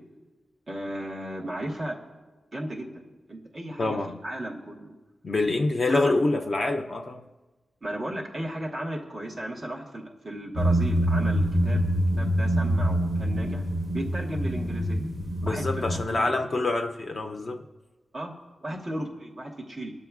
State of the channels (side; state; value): both; normal; correlation 0.88